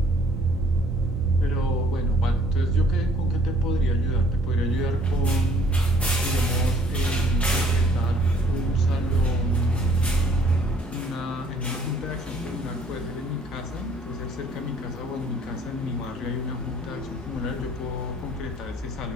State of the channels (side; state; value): both; normal; correlation 0.60